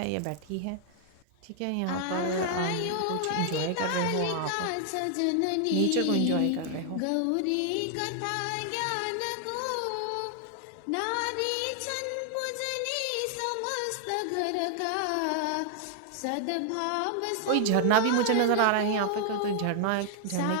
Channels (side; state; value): both; different; correlation 0.00